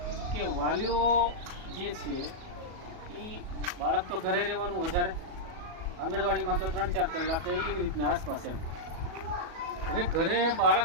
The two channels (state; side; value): late; left; 37 ms